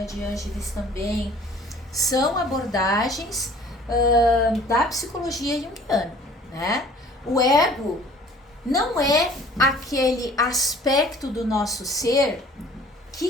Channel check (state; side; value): normal; both; correlation 0.51